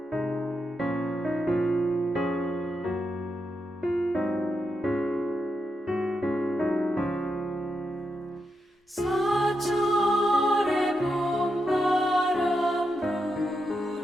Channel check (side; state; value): both; normal; correlation 0.85